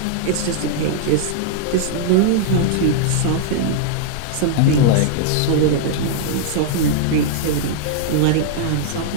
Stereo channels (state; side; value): different; both; correlation -0.01